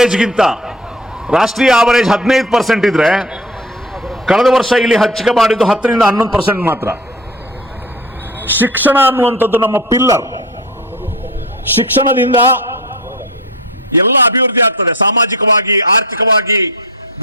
15% ಇದ್ರೆ ಕಳೆದ ವರ್ಷ ಇಲ್ಲಿ ಹಂಚಿಕೆ ಮಾಡಿದ್ದು 10ರಿಂದ 11% ಮಾತ್ರ. ಶಿಕ್ಷಣ ಅನ್ನುವಂಥದ್ದು ನಮ್ಮ ಪಿಲ್ಲರ್. ಶಿಕ್ಷಣದಿಂದ ಎಲ್ಲ ಅಭಿವೃದ್ಧಿ ಆಗ್ತದೆ, ಸಾಮಾಜಿಕವಾಗಿ, ಆರ್ಥಿಕವಾಗಿ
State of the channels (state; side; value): normal; both; correlation 0.35